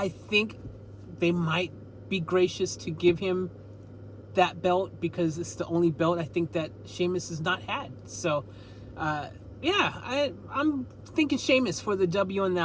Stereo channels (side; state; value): both; identical; correlation 1.00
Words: think they might be gracious to give him that belt because it's the only belt I think that Sheamus has not had. So, yeah, I'm thinking Sheamus for the W on